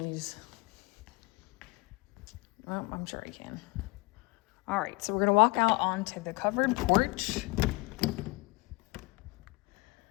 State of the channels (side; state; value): right; quieter; 24.6 dB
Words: Well, I'm sure I can. All right, so we're gonna walk out onto the covered porch.